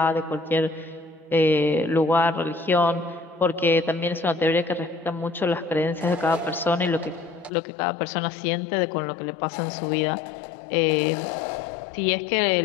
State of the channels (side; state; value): right; drops out; at 7.5 s